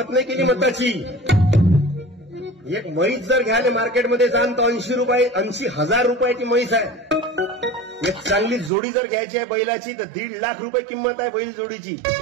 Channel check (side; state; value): left; drops out; at 8.7 s